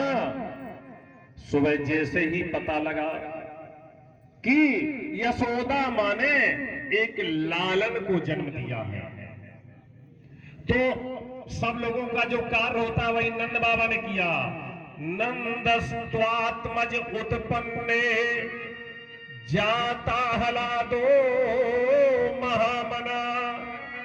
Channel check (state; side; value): identical; both; correlation 1.00